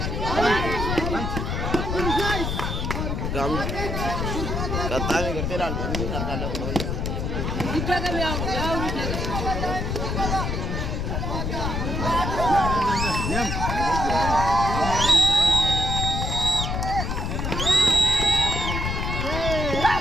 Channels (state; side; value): noise; left; rumble, 1 dB below the sound